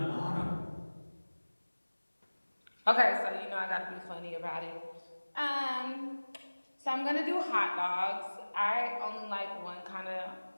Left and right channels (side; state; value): both; inverted; correlation -1.00